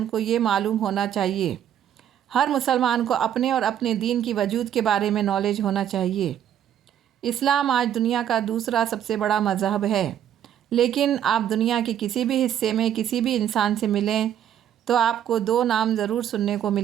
کو یہ معلوم ہونا چاہیے۔ ہر مسلمان کو اپنے اور اپنے دین کی وجود کے بارے میں نالج ہونا چاہیے۔ اسلام آج دنیا کا دوسرا سب سے بڑا مذہب ہے، لیکن آپ دنیا کے کسی بھی حصے میں کسی بھی انسان سے ملیں تو آپ کو دو نام ضرور سننے کو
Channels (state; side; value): quieter; left; 10.2 dB